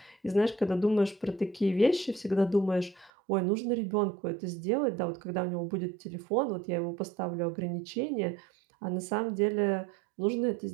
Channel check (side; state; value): left; drops out; at 3.1 s